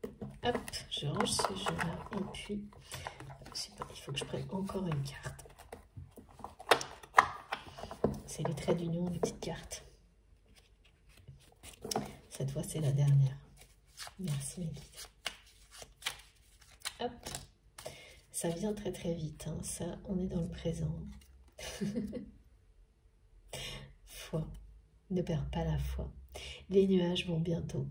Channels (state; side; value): identical; both; correlation 1.00